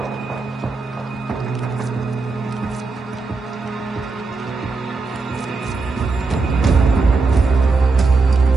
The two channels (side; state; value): left; quieter; 4.1 dB